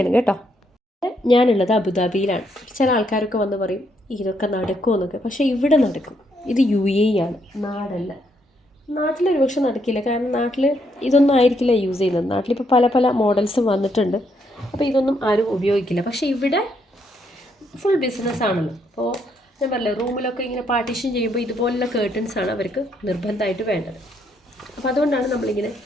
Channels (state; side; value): normal; both; correlation 0.74